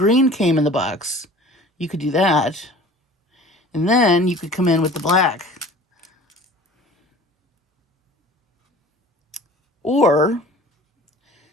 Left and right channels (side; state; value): both; normal; correlation 0.44